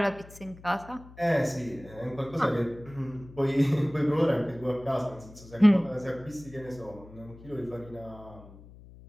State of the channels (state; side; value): noise; left; hum, 19 dB below the sound